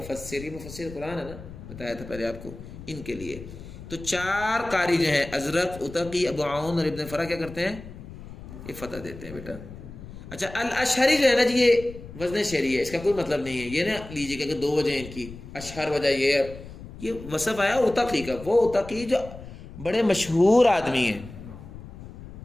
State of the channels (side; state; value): left; noise; rumble, 14 dB below the sound